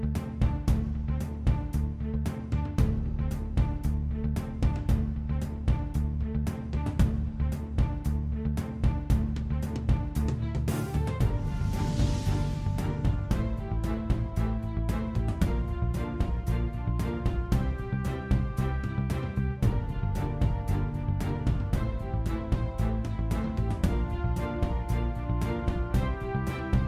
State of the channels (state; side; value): identical; both; correlation 1.00